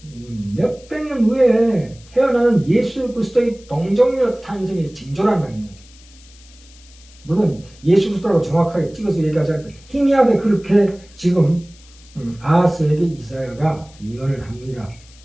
후에 태어나는 예수 그리스도의 동정녀 탄생의 징조란 말입니다. 물론 예수 그리스도라고 정확하게 찍어서 얘기하지 않고 희미하게 그렇게 지금 아하스에게 이사야가 예언을 합니다.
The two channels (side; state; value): left; noise; hiss, 25 dB below the sound